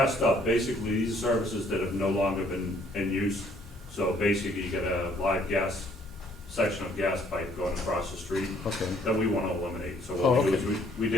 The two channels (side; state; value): both; normal; correlation 0.63